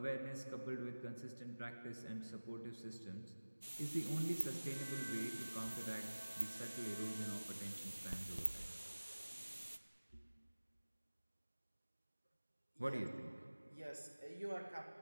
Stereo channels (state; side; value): inverted; both; correlation -1.00